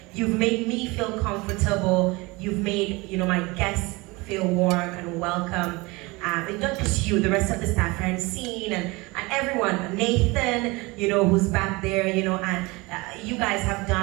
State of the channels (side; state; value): left; quieter; 24.1 dB